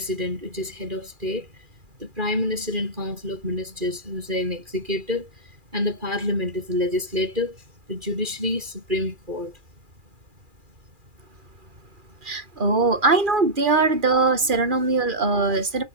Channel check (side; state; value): left; late; 2.4 ms